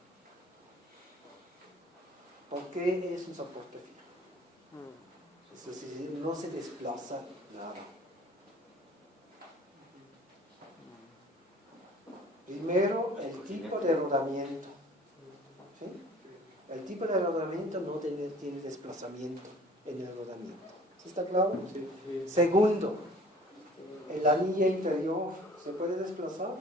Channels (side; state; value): both; normal; correlation 0.50